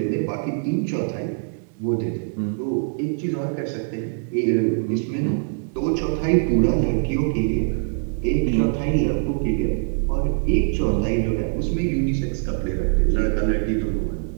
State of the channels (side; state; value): left; silent; digital silence